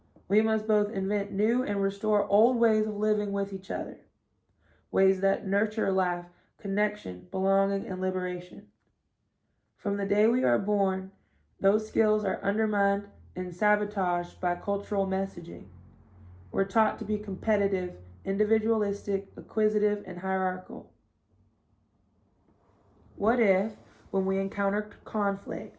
We must both invent new and restore old ways of living with each other, ways that nurture life, connection, belonging, and liberation. From the day we are born, those skills are undermined and sabotaged by cultural messaging. We're taught to be competitive, individualistic, acquisitive, and hierarchical. What if, when we encountered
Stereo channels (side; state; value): both; identical; correlation 1.00